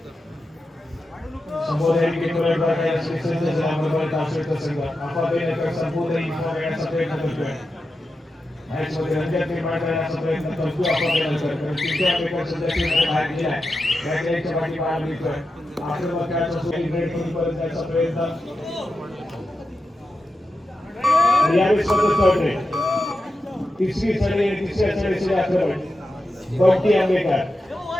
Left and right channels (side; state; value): both; normal; correlation 0.90